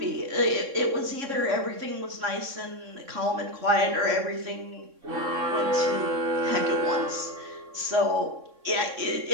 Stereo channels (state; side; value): late; left; 3.6 ms